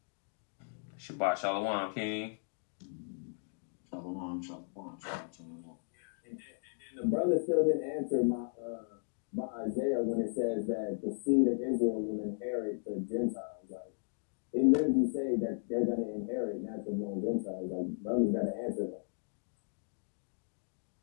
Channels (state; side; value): silent; right; digital silence